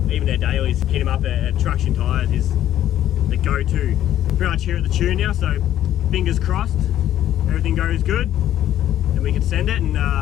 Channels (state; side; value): quieter; right; 12.0 dB